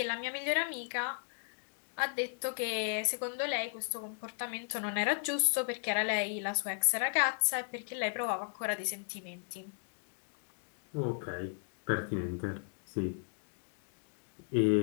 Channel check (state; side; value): silent; right; digital silence